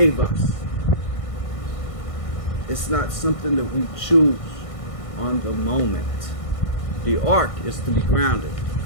us. It's not something that we choose on the moment. The ark is to be grounded.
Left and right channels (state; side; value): late; right; 1.6 ms